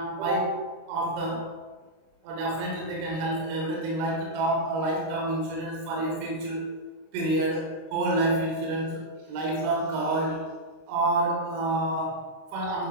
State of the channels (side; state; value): left; late; 26 ms